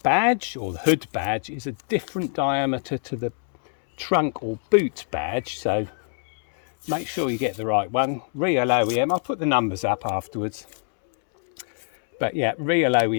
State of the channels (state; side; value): silent; right; 62 dB below the other